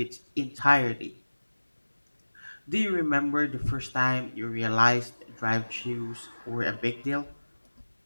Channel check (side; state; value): both; inverted; correlation -1.00